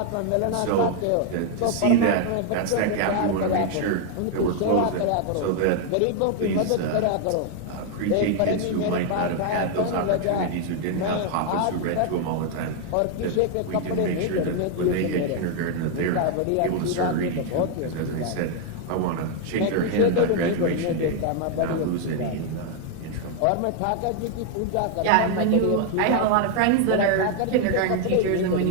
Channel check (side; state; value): both; different; correlation 0.00